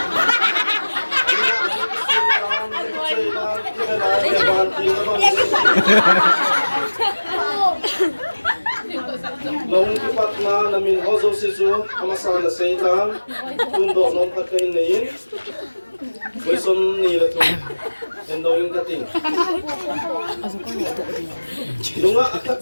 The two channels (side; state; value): both; inverted; correlation -1.00